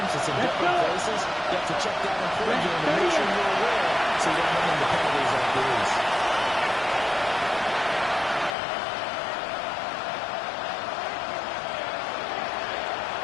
It's in different places. You have to check that in pregame and make sure you're aware so you don't run into penalties like these.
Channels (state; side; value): drops out; right; at 8.6 s